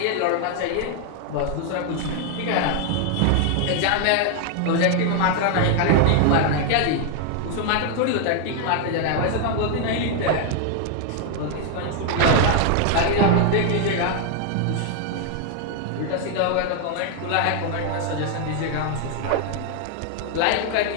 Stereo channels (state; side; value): different; both; correlation 0.00